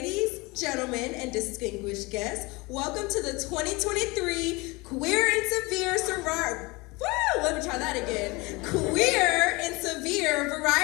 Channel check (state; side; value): quieter; right; 24.6 dB